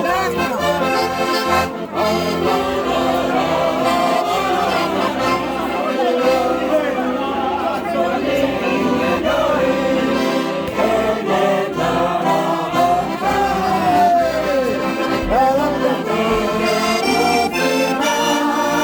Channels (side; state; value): both; identical; correlation 1.00